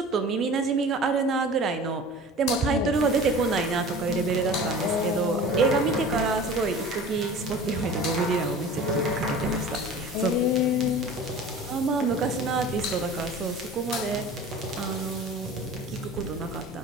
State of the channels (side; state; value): both; normal; correlation 0.40